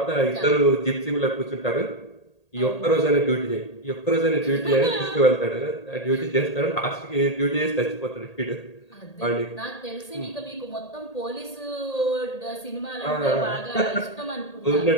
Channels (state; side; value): late; right; 1.8 ms